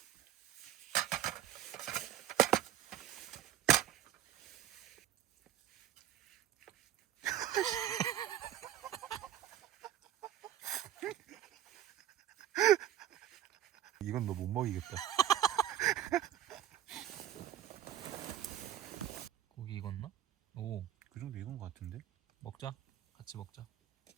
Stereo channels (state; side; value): quieter; left; 11.6 dB